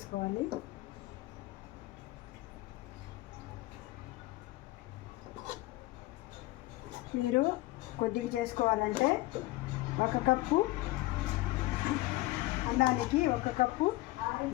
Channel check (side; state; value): right; quieter; 19.0 dB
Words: మీరు కొద్దిగా చేసుకోవాలంటే 1 కప్పు అన్నానికి 1 కప్పు